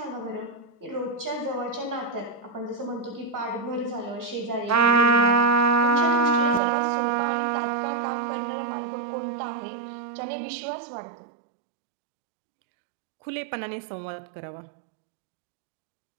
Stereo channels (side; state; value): left; drops out; at 6.6 s